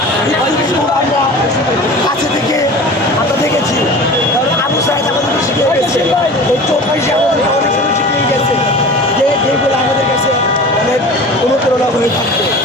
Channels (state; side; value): normal; both; correlation 0.38